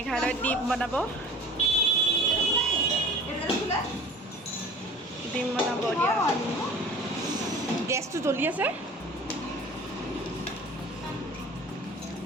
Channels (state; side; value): normal; both; correlation 0.42